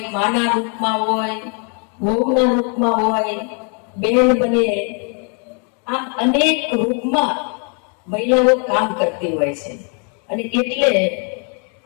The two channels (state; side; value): quieter; right; 39.2 dB